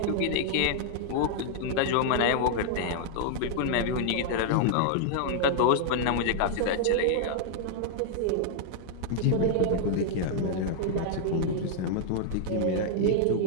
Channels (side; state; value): both; different; correlation -0.01